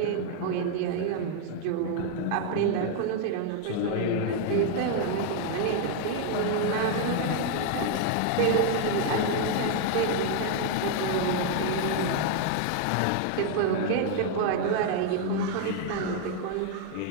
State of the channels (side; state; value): both; different; correlation 0.00